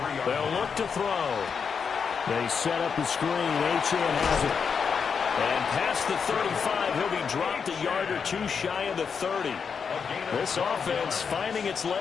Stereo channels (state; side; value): quieter; right; 6.2 dB